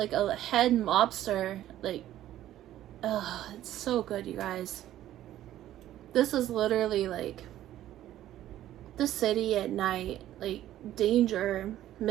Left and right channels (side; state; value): left; quieter; 13.0 dB